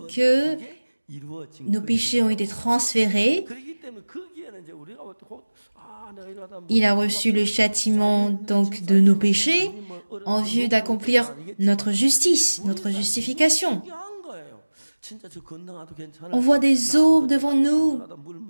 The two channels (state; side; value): inverted; both; correlation -1.00